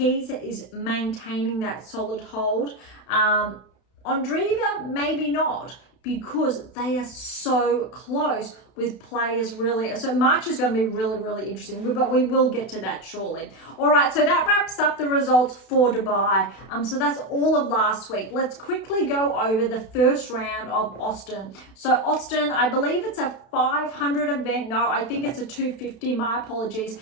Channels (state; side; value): late; right; 32 ms